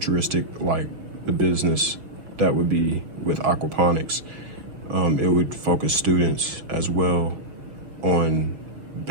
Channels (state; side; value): late; left; 6.3 ms